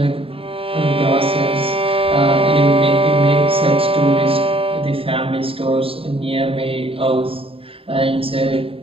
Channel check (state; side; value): late; left; 0.27 ms